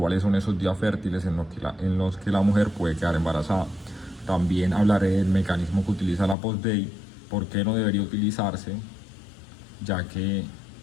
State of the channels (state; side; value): drops out; right; at 6.4 s